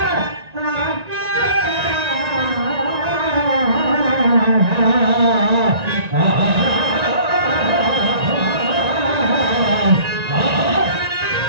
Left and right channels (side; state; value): left; late; 1.9 ms